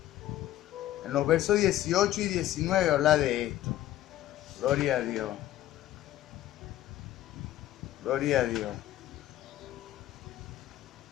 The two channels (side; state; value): right; quieter; 13.7 dB